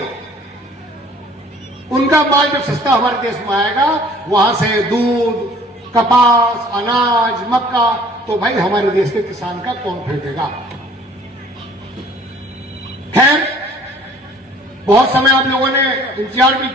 उनका माल जब सस्ता हमारे देश में आएगा, वहां से दूध, कपास, अनाज, मक्का, तो भाई हमारे देश के किसान का कौन खरीदेगा? खैर, बहुत समय आप लोगों ने इंतजार भी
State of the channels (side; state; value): both; normal; correlation 0.53